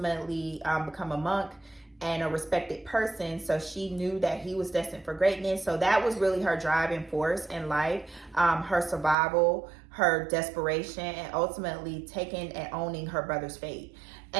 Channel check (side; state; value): left; drops out; at 9.2 s